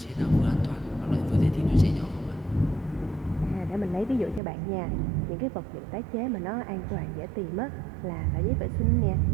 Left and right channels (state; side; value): drops out; left; at 4.4 s